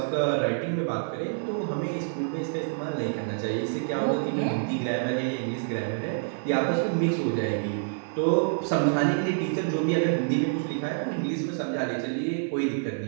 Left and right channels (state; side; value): silent; left; 60 dB below the other